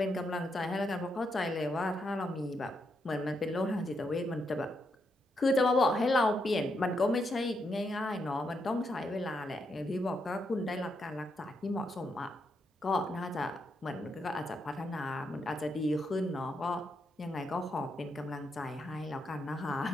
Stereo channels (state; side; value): normal; both; correlation 0.81